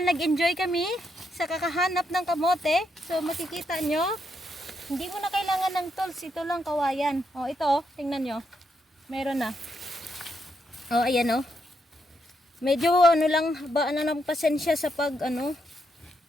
nag-enjoy kami sa kakahanap ng kamote, so makikita nyo, hindi mo na kailangan ng tools, ito lang kawayan. O ito, tingnan nyo, meron na. O ayan o. Medyo ano lang, ba na ng pasensya sa pag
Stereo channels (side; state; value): both; normal; correlation 0.79